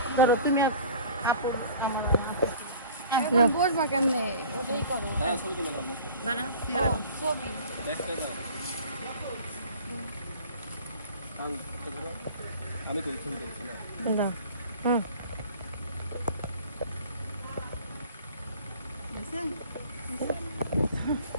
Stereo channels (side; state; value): both; inverted; correlation -0.44